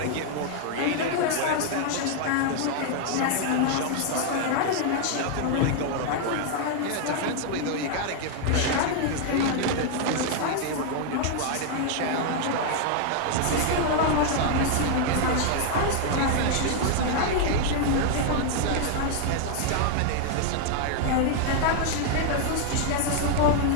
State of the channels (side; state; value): both; different; correlation 0.00